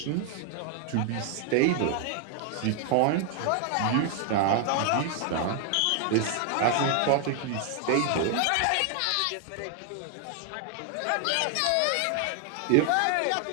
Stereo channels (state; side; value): different; both; correlation 0.00